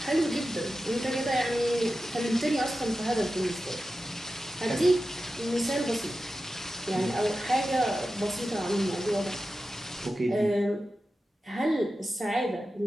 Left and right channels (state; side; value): normal; both; correlation 0.92